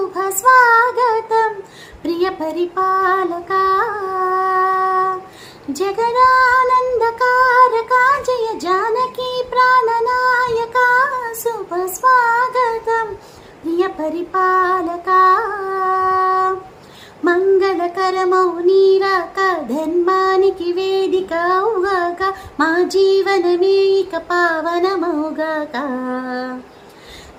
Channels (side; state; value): both; identical; correlation 1.00